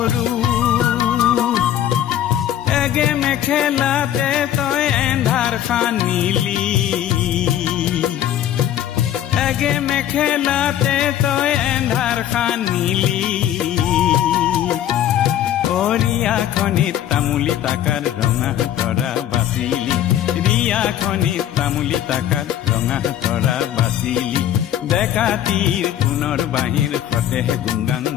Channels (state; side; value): quieter; right; 11.3 dB